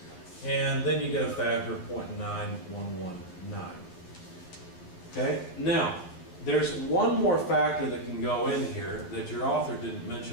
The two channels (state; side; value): late; right; 11 ms